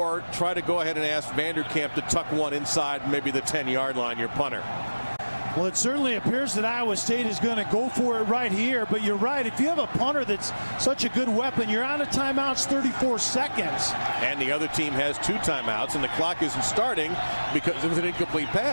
try to go ahead and ask Vanderkamp to tuck one inside maybe the 10-yard line, your punter. Well, it certainly appears that Iowa State is going to go for it right here, but you're right. If you have a punter that's such a good weapon, you're out of timeouts 34 seconds. And the other team has 2 timeouts, and the clock isn't starting because it was an incomplete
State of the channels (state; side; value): inverted; both; correlation -1.00